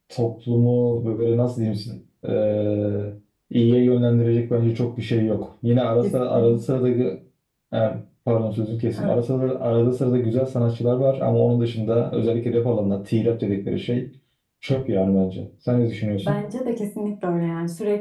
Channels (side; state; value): both; identical; correlation 1.00